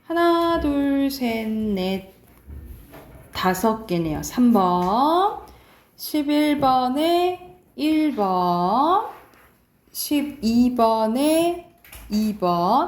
하나, 둘, 셋, 넷, 5개네요. 3번, 11번에 1번, 12번에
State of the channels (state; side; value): identical; both; correlation 1.00